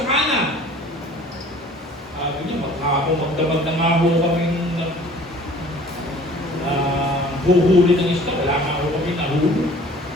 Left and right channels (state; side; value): normal; both; correlation 0.50